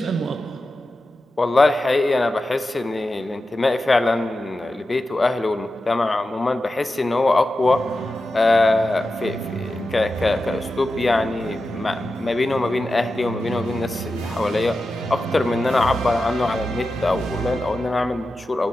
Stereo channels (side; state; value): both; normal; correlation 0.92